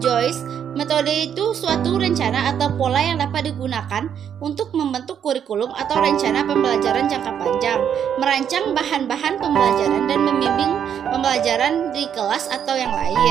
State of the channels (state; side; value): quieter; left; 8.6 dB